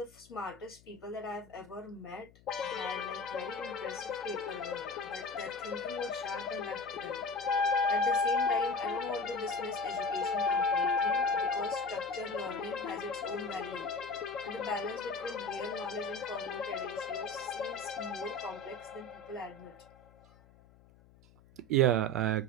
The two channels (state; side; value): noise; left; hum, 26 dB below the sound